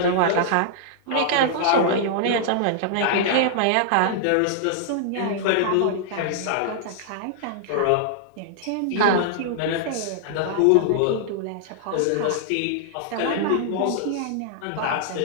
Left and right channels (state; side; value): different; both; correlation -0.01